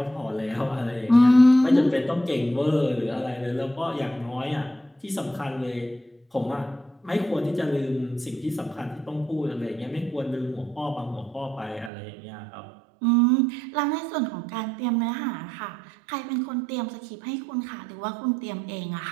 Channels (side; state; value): left; drops out; at 11.9 s